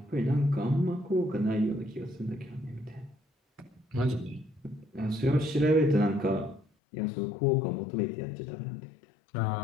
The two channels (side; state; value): right; drops out; at 6.7 s